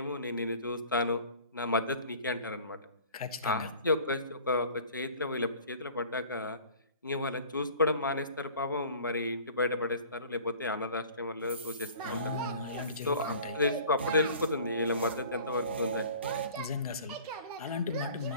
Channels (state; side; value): inverted; both; correlation -0.46